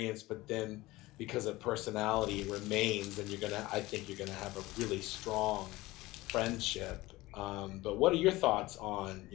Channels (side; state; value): right; quieter; 19.3 dB